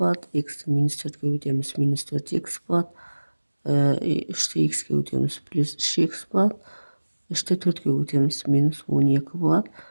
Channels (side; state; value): both; inverted; correlation -1.00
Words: x минус 4-ке көбейтеміз, минус 4x болады, 3-те x ке көбейтеміз, плюс 3x болады, 3-те 4-ке көбейтеміз, минус 12 болады.